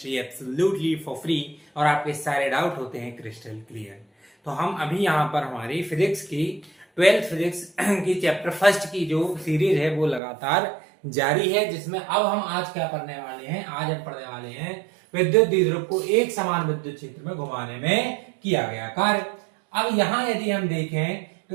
absolutely for free और आपके सारे डाउट होते हैं क्रिस्टल क्लियर। तो हम अभी यहां पर हमारी फिजिक्स की 12th फिजिक्स की चैप्टर फर्स्ट की जो सीरीज है वो लगातार जारी है, जिसमें अब हम आज क्या पढ़ने वाले हैं। आज हम पढ़ने वाले हैं विद्युत द्विध्रुव को एक समान विद्युत क्षेत्र में घुमाने में किया गया कार्य। अब यहाँ यदि हम देखें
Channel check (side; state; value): left; drops out; at 10.2 s